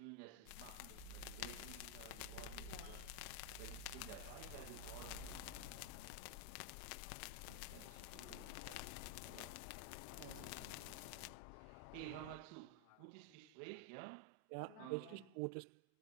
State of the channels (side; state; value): both; different; correlation 0.00